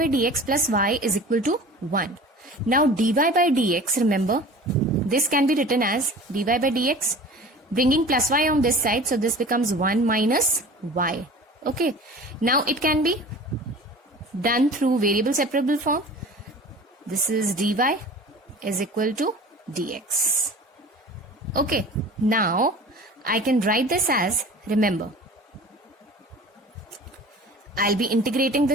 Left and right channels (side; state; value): both; normal; correlation 0.41